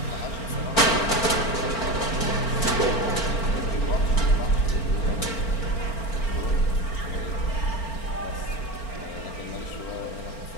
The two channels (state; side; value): late; right; 4.4 ms